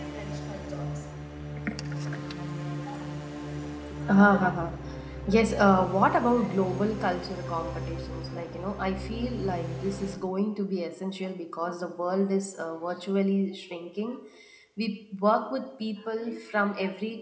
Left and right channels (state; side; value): identical; both; correlation 1.00